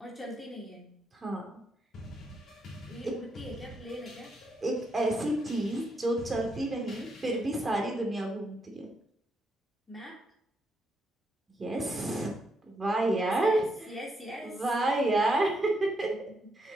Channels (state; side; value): normal; both; correlation 0.78